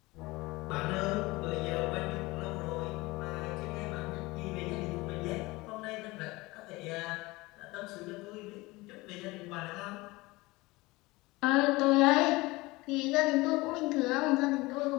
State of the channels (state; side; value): quieter; right; 21.8 dB